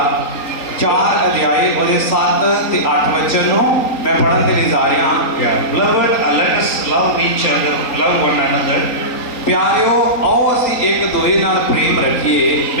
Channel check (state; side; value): late; right; 3.8 ms